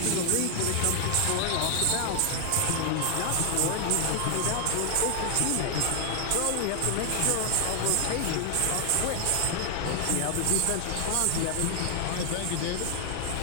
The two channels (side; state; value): both; different; correlation 0.00